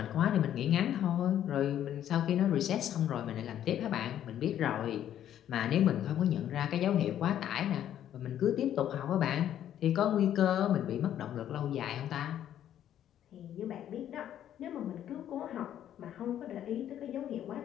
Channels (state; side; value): quieter; right; 10.9 dB